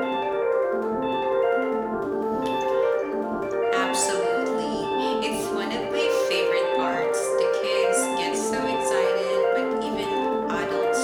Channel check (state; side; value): identical; both; correlation 1.00